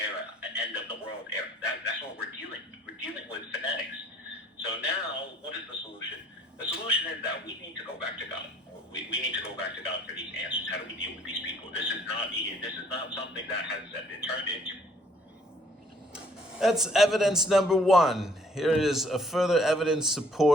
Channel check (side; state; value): both; normal; correlation 0.61